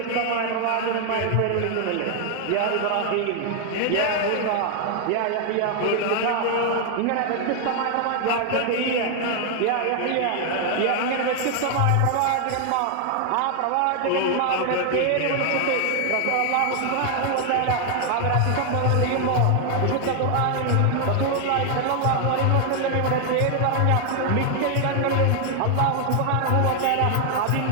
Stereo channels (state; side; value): different; both; correlation 0.00